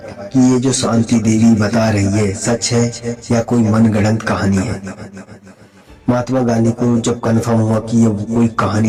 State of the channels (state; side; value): identical; both; correlation 1.00